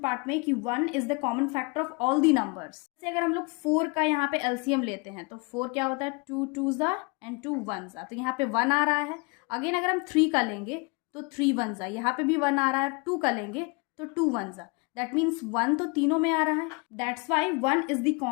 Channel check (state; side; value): quieter; right; 29.1 dB